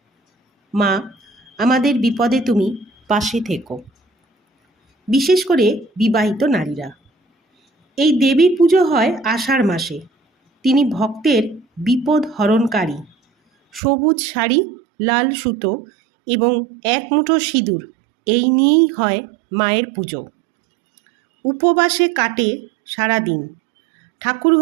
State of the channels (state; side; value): drops out; left; at 13.8 s